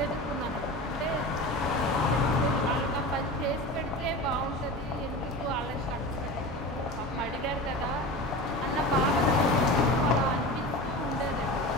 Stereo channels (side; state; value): both; normal; correlation 0.30